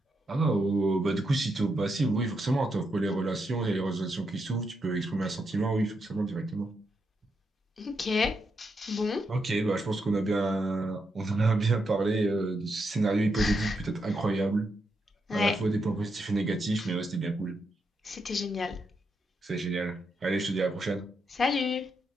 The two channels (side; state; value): both; normal; correlation 0.82